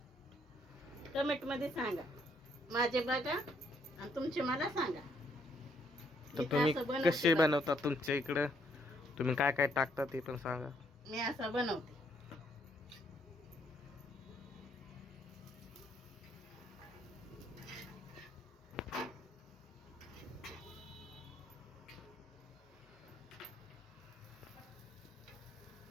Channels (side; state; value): both; normal; correlation 0.70